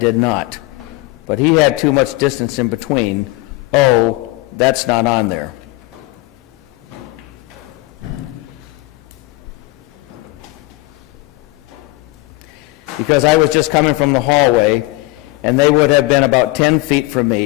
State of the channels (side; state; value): right; quieter; 21.1 dB